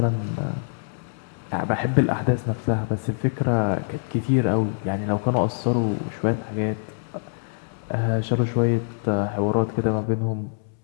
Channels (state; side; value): silent; right; 62 dB below the other